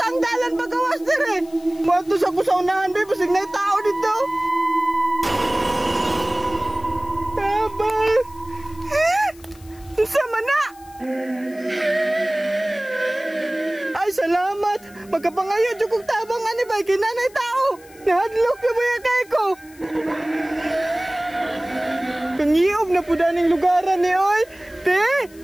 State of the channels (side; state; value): left; noise; hiss, 25 dB below the sound